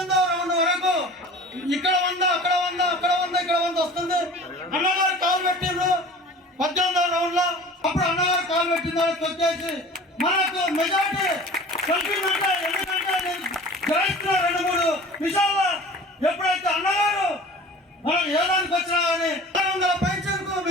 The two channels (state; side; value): normal; both; correlation 0.41